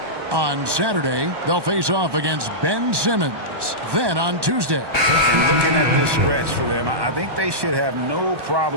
On Saturday, they'll face off against Ben Simmons. Then on Tuesday. And looking at this stretch for them, I think they should have no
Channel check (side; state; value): left; late; 1.2 ms